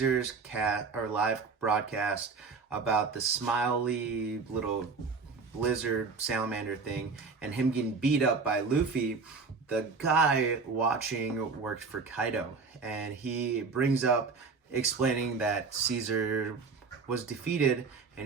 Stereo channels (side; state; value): left; quieter; 4.8 dB